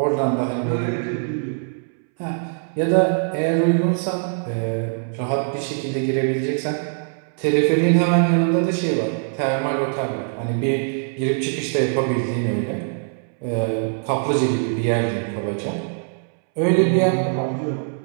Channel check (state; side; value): silent; left; 64 dB below the other